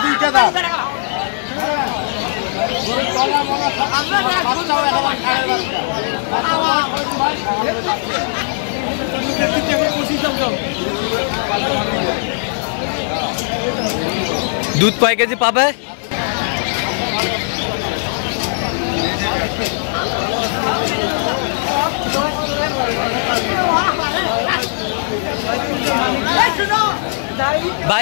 2টা দাম। দুধ কয় কেজি পাবে?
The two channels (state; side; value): silent; right; digital silence